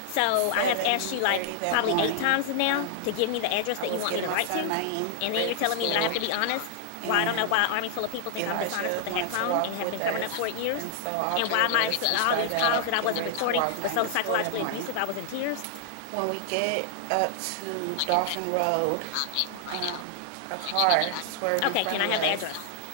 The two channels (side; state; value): both; different; correlation 0.00